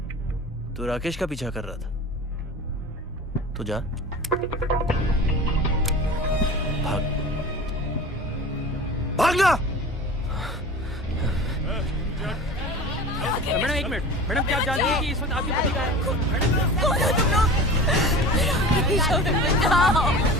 तू राकेश का पीछा कर रहा था। तो जा, भाग, भागना। मैडम एक मिनट, मैडम क्या आप जानती हैं कि इस वक्त आपकी पति कहाँ है? कौन हो तुम लोग?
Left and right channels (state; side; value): normal; both; correlation 0.36